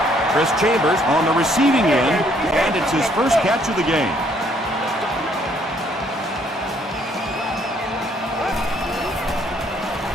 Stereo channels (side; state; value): both; normal; correlation 0.66